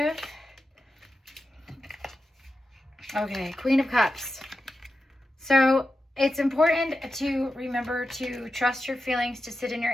Okay, Queen of Cups. So it's important to remember to trust your feelings, to sit in your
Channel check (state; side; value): normal; both; correlation 0.90